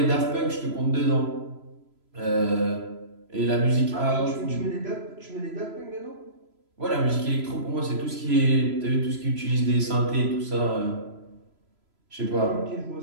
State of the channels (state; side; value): late; left; 3.0 ms